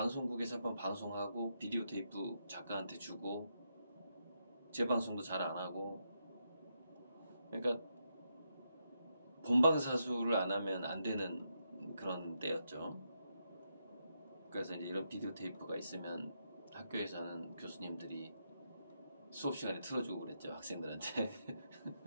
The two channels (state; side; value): inverted; both; correlation -0.82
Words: 한번 방송하고 비디오 테이프 작가한테 주고 재방송도 잘 안 하고 그러니까 본방사수를 안 하면 안 되는 그런 때였죠. 그래서 이제 이런 비디오 테이프가 있으면 학교에서는 교수님들이 수업 시간에 틀어주고 그랬죠, 학생들한테.